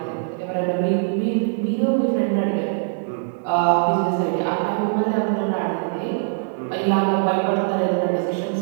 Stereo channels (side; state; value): left; silent; 64 dB below the other